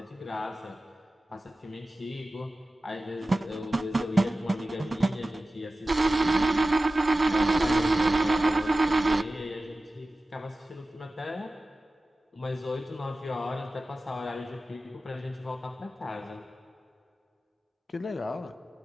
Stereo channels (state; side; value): normal; both; correlation 0.95